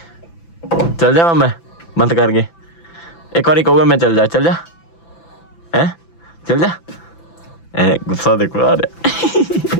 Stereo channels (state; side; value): late; right; 5.9 ms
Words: ਚੱਲ ਜਾਵਾਂ ਮੈਂ ਬੰਦ ਕਰਕੇ? ਇੱਕ ਵਾਰੀ ਕਹੂਗਾ ਮੈਂ ਚੱਲ ਜਾ ਹੈ ਚੱਲ ਜਾ। ਗੁੱਸਾ ਦੇਖੋ ਆ ਰਿਹਾ।